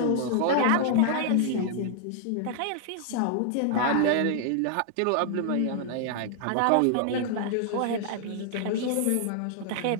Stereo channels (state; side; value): different; both; correlation 0.00